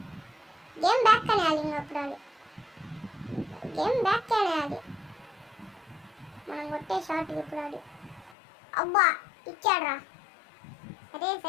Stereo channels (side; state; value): right; drops out; at 8.3 s